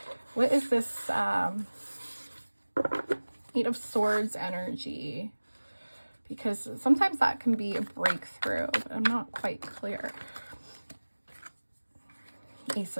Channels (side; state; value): both; inverted; correlation -1.00